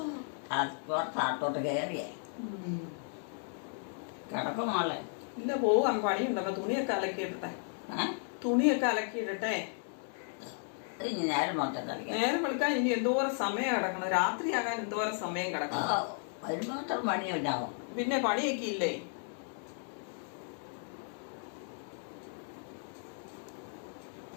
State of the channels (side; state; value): right; silent; 55 dB below the other